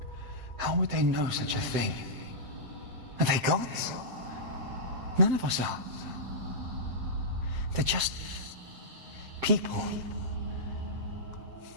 How would they know such a thing? Are they gods? None of us are. They're just people.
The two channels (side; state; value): left; late; 7.8 ms